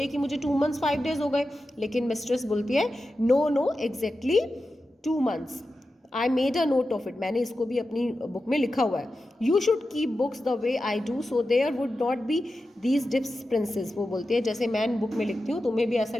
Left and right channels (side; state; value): both; normal; correlation 0.92